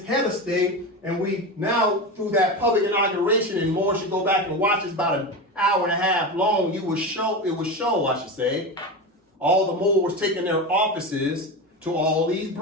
head of state. And we now, through that public inauguration, and more should go back and watch, it's about an hour and a half long. It would show, I should say, all the Moors taking their offices to all these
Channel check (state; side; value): normal; both; correlation 0.22